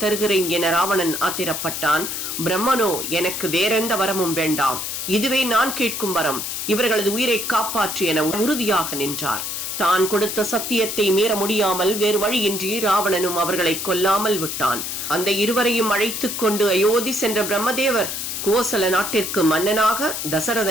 தருகிறேன் என ராவணன் ஆத்திரப்பட்டான். பிரம்மனோ, எனக்கு வேறெந்த வரமும் வேண்டாம், இதுவே நான் கேட்கும் வரம், இவர்களது உயிரை காப்பாற்று என உறுதியாக நின்றார். தான் கொடுத்த சத்தியத்தை மீற முடியாமல் வேறு வழியின்றி ராவணனும் அவர்களை கொல்லாமல் விட்டான். அந்த இருவரையும் அழைத்துக் கொண்டு அயோத்தி சென்ற பிரம்மதேவர் கோசல நாட்டிற்கு மன்னனாக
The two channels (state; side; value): noise; left; hiss, 4 dB below the sound